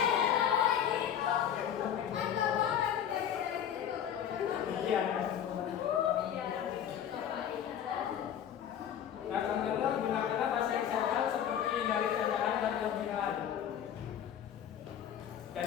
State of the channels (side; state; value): right; quieter; 9.4 dB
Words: Iya. Nah, teman-teman gunakanlah bahasa yang sopan seperti dari candaan dan lebihan.